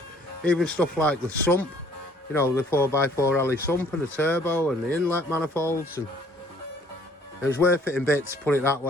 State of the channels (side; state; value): both; normal; correlation 0.59